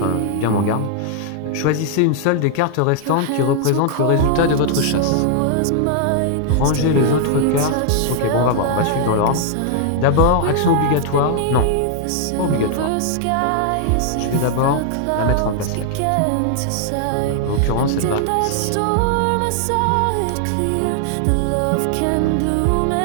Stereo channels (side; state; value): both; different; correlation 0.00